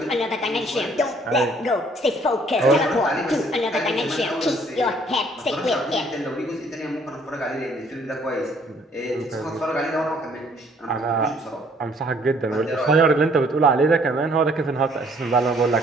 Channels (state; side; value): normal; both; correlation 0.61